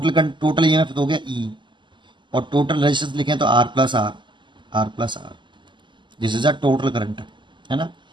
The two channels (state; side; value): late; left; 0.23 ms